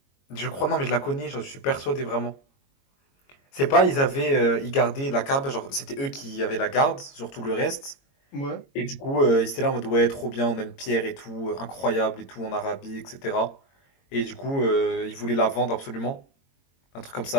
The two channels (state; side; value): late; right; 22 ms